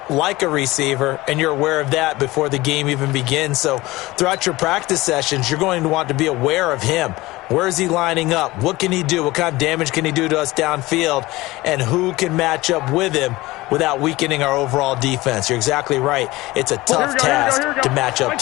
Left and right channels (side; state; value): right; quieter; 19.6 dB